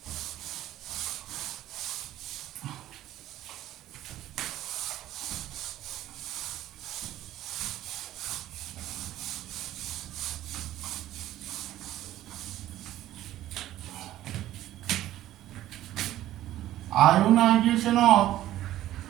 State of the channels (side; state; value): left; quieter; 13.9 dB